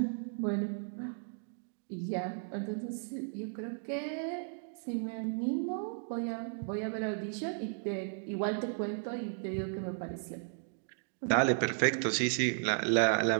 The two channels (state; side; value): silent; left; digital silence